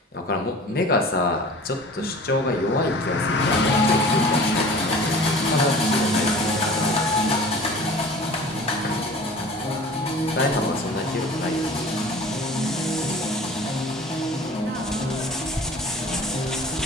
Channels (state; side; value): normal; both; correlation 0.42